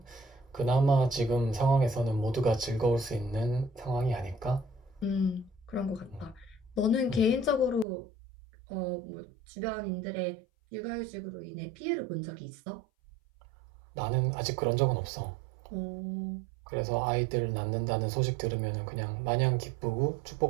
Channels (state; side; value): drops out; left; at 7.9 s